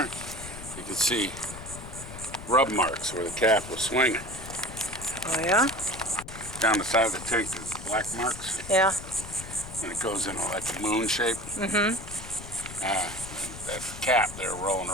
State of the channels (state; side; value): noise; left; rumble, 12 dB below the sound